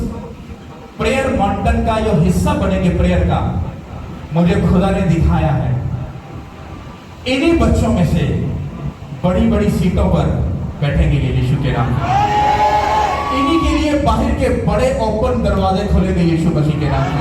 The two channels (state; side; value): identical; both; correlation 1.00